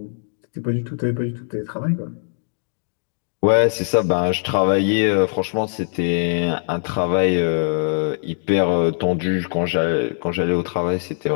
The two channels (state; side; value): silent; right; digital silence